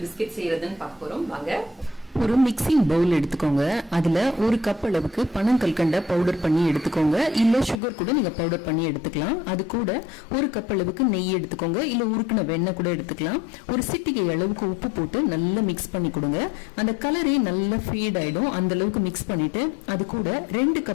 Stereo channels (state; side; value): drops out; right; at 7.8 s